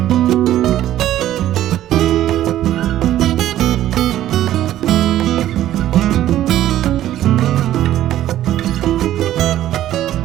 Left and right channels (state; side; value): quieter; left; 12.9 dB